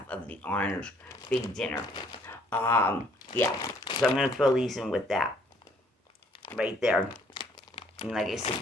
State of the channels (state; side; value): normal; both; correlation 0.63